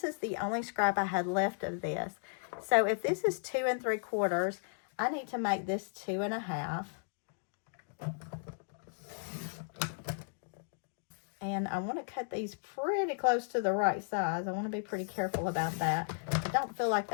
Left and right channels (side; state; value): right; silent; digital silence